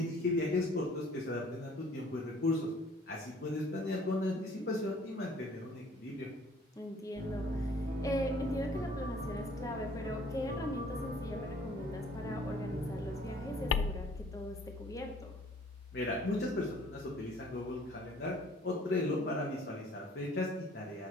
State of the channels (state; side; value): normal; both; correlation 0.55